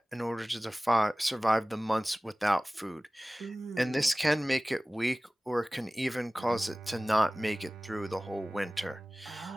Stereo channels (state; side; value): normal; both; correlation 0.98